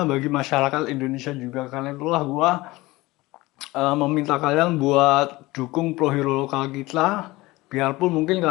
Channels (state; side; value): quieter; right; 20.3 dB